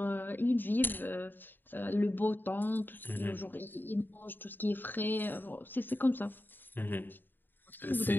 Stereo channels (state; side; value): late; right; 0.093 ms